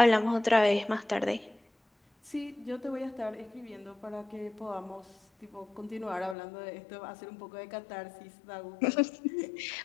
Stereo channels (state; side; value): drops out; right; at 6.4 s